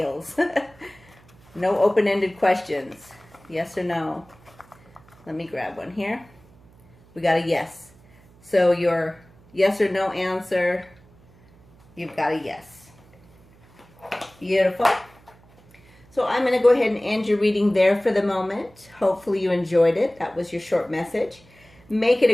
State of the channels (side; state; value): right; noise; hum, 27 dB below the sound